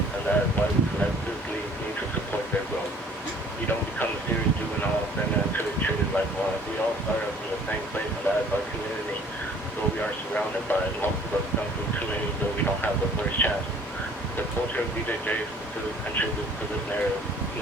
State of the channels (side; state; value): both; normal; correlation 0.54